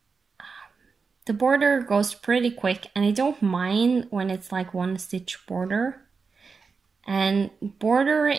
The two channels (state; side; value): quieter; left; 5.0 dB